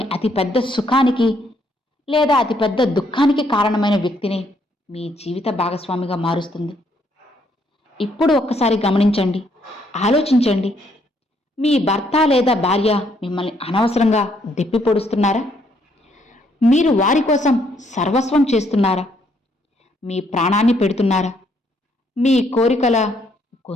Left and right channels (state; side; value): normal; both; correlation 0.70